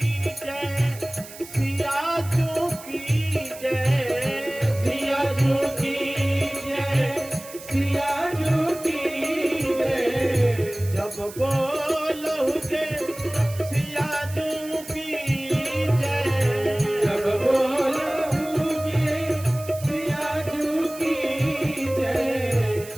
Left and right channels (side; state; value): right; noise; hiss, 16 dB below the sound